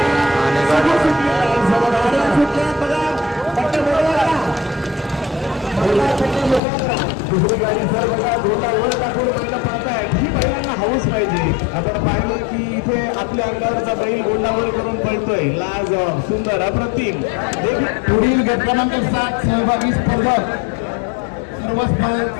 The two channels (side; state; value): right; drops out; at 6.6 s